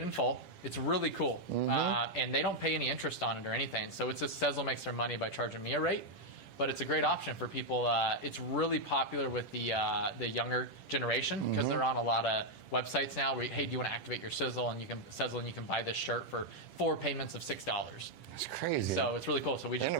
in full. It's really cool. And they don't pay any interest on it or anything. So it's just Sezzle makes their money by charging me a rate. But it's a great option for people. It's really popular with the younger generation because they're on a lot of websites now where, hey, do you want to activate your Sezzle and you can buy this shirt for 4 payments of $6. That's crazy. So it's really cool. So we just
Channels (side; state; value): right; late; 10 ms